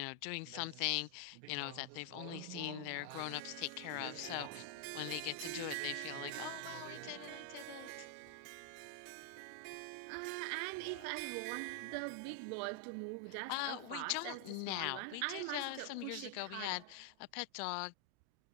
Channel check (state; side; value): different; both; correlation 0.00